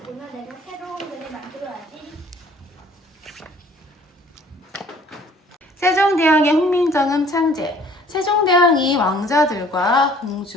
내가 새로운 글을 만들어야지. 세종대왕의 훈민정음 창제. 세종대왕이 왕자들과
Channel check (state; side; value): normal; both; correlation 0.55